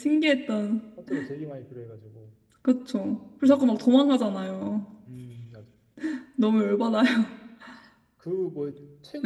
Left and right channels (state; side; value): identical; both; correlation 1.00